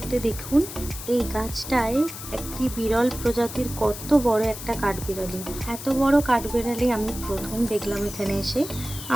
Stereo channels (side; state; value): left; noise; hiss, 10 dB below the sound